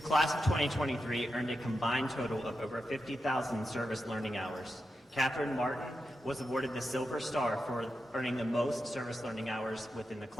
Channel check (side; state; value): both; normal; correlation 0.89